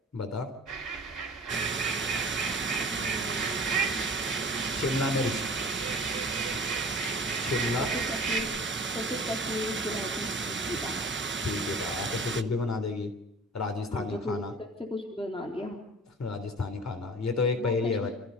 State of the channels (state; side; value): normal; both; correlation 0.42